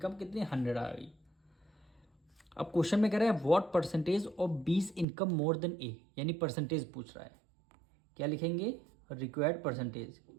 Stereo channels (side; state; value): left; drops out; at 5.1 s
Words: कितनी, 100 आ गई। अब क्वेश्चन में कह रहा है what percentage of B's income more than A, यानी परसेंटेज पूछ रहा है। क्या लिखेंगे, रिक्वायर्ड परसेंटेज,